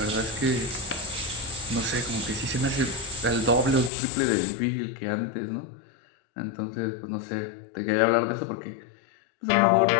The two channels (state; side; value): drops out; right; at 3.9 s